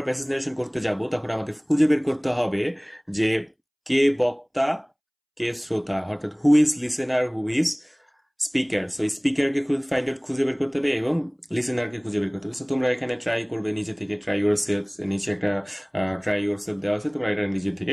প্যাসেজ নারেশন করতে যাব তখন আমাদের খুঁজে বের করতে হবে যে কে বক্তা, কে শ্রোতা, অর্থাৎ who is listener, who is speaker. So স্পিকারকে ফাইন্ড আউট, খুঁজে বের করতে হবে, এবং লিসেনারকে খুঁজে বের করতে হবে। সো তোমরা এখানে ট্রাই করবে নিজে থেকে, ট্রাই ইউর সেলফ, নিচে একটা ট্রাই ইউর সেলফ দেওয়া আছে, তোমরা এটা নিজে থেকে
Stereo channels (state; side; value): identical; both; correlation 1.00